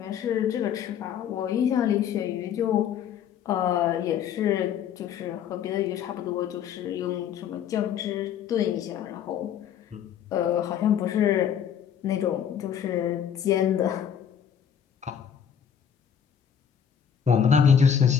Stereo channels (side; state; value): right; quieter; 8.4 dB